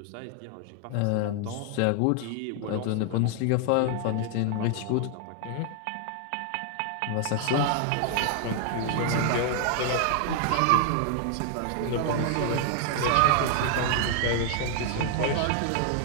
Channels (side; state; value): both; different; correlation 0.00